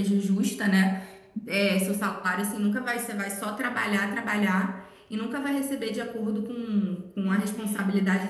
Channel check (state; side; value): identical; both; correlation 1.00